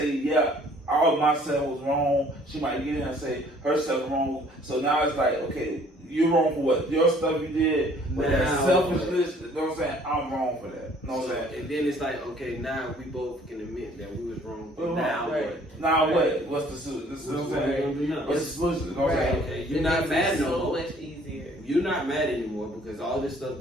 yeah, all of myself was wrong. She might get in and say herself wrong. So now it's like, okay, you're wrong for what? Your stuff you did, but that selfishness, you know what I'm saying? I'm wrong for that. You know what I'm saying? And then it's like, okay, now we both can admit that we was wrong. Now what? Now what? What's the solution? This is what I'm saying. What's the solution? You know what I'm saying? Okay, you're not mad no more. So much easier. You're not mad anymore because all this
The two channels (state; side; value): normal; both; correlation 0.57